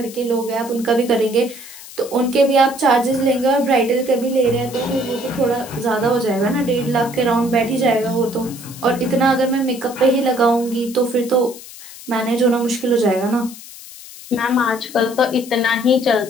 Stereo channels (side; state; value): left; noise; hiss, 16 dB below the sound